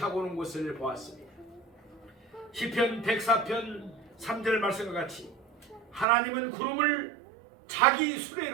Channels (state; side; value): drops out; left; at 6.1 s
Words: 오는 것을 보았습니다. 시편 104편 3절 말씀과 같이 하나님은 구름을 자기